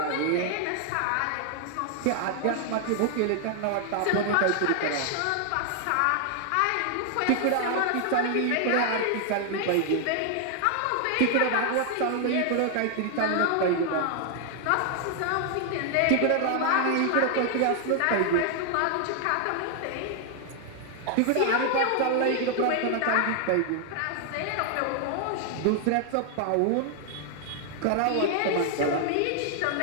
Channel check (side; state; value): both; different; correlation 0.00